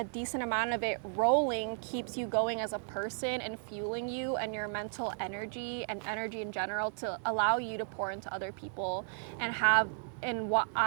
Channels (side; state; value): left; silent; digital silence